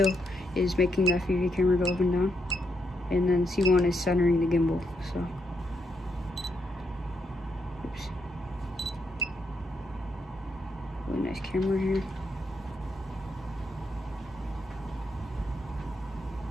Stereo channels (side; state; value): both; normal; correlation 0.79